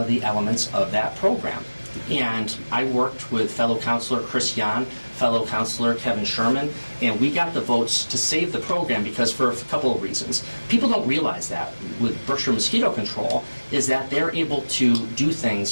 of the elements of that program. And I worked with fellow councilor Chris Yan, fellow councilor Kevin Sherman, and we got the votes to save the program because for a couple of reasons. People don't realize that with Berkshire Mosquito Control is that they're able to do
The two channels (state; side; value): inverted; both; correlation -1.00